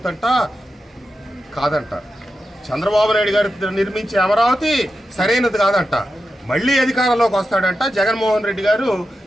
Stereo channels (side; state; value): both; normal; correlation 0.90